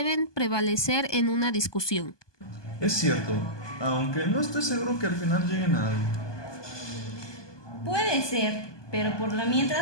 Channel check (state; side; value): late; right; 1.2 ms